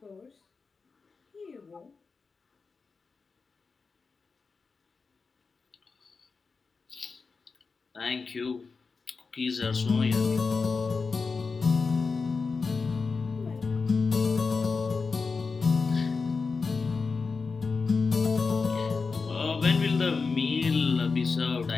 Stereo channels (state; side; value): quieter; right; 4.6 dB